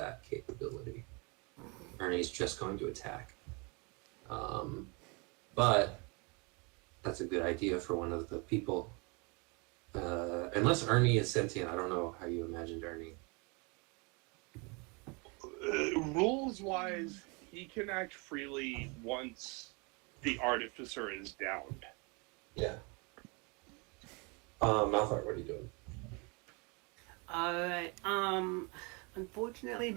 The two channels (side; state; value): left; quieter; 30.6 dB